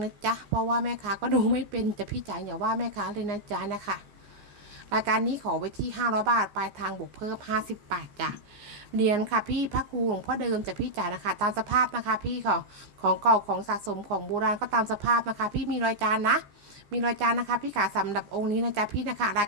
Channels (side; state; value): left; late; 14 ms